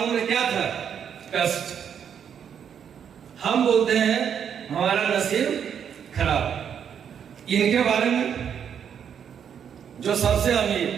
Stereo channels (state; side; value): quieter; left; 8.1 dB